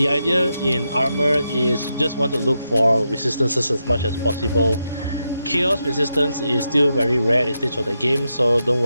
idea in armor is you just want to look for resistances as much as possible. Chaos resistance is still very rare at this stage of the game, so don't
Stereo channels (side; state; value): both; inverted; correlation -0.85